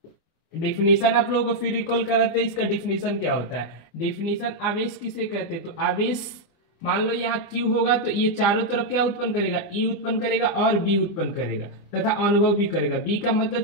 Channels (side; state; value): right; late; 24 ms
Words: डेफिनेशन आप लोगों को फिर रिकॉल कराते हैं, इसका डेफिनेशन क्या होता है। डेफिनेशन आवेश किसे कहते हैं, तो आवेश मान लो यहाँ Q होगा तो ये चारों तरफ क्या उत्पन्न करेगा, E उत्पन्न करेगा और B उत्पन्न करेगा तथा अनुभव भी करेगा। B का मतलब